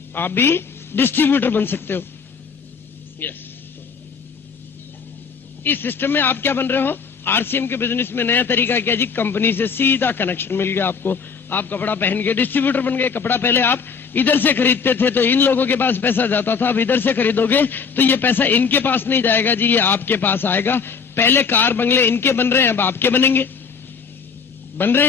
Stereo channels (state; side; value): quieter; right; 5.8 dB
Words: आप भी डिस्ट्रीब्यूटर बन सकते हो। यस, इस सिस्टम में आप क्या बन रहे हो? आरसीएम के बिजनेस में नया तरीका क्या जी? कंपनी से सीधा कनेक्शन मिल गया आपको। आप कपड़ा पहन के डिस्ट्रीब्यूटर बन गए। कपड़ा पहले आप इधर से खरीदते थे तो इन लोगों के पास पैसा जाता था, अब इधर से खरीदोगे तो ये पैसा इनके पास नहीं जाएगा जी, ये आपके पास आएगा। पहले कार बंगले इनके बन रहे हैं, अब आपके बनेंगे, बन रहे